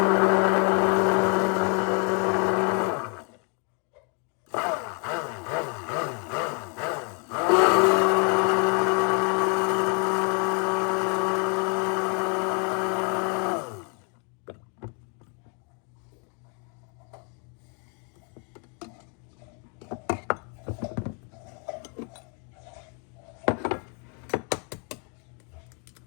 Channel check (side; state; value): right; quieter; 37.6 dB